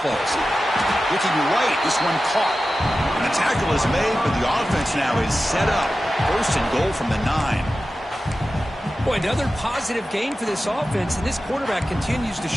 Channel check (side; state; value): both; normal; correlation 0.94